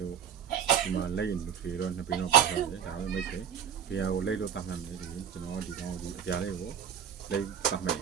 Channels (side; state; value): left; quieter; 8.7 dB